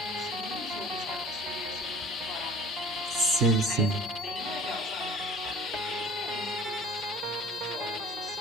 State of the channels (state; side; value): normal; both; correlation 0.47